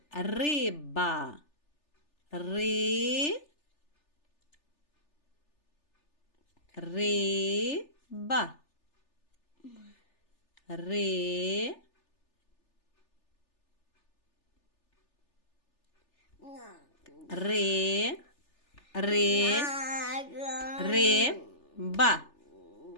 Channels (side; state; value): right; late; 3.4 ms